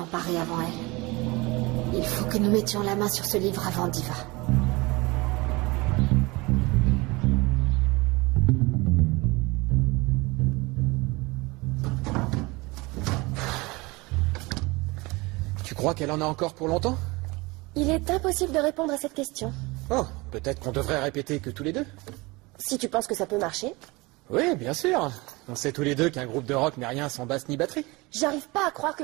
avant elle. Il faut que nous mettions la main sur ce livre avant Diva. Tu crois qu'elle en a encore pour longtemps? Il est impossible de répondre à cette question. Oh, peut-être qu'on devrait répéter que tous les deux. Si tu penses que ça peut marcher. Oui, bien sûr. On sait tous les deux qu'un groupe de rock n'est rien sans basse ni batterie. J'arrive pas à croire que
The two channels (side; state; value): left; quieter; 24.0 dB